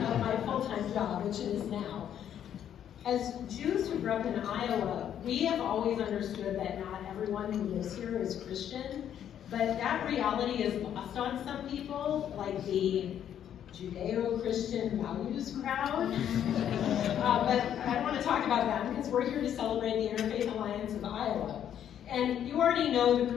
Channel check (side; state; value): right; quieter; 9.8 dB